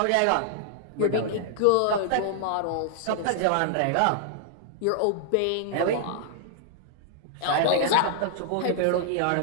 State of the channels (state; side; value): different; both; correlation -0.01